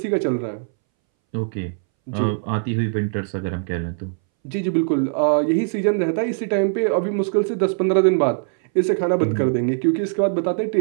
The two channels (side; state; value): left; silent; 63 dB below the other